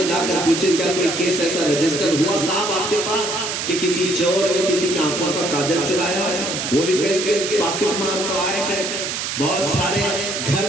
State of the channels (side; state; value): right; noise; hiss, 3 dB below the sound